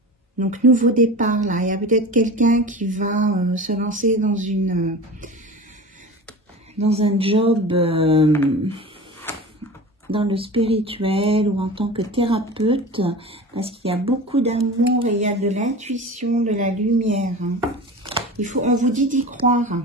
Donc, nouveau départ là. Il y a peut-être quelqu'un qui va se lancer dans un job dans le spirituel ou en tant que thérapeute, parce qu'il y a beaucoup d'amour et il y a de l'intuition, de la lumière. On vous dit d'y croire.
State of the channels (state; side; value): normal; both; correlation 0.33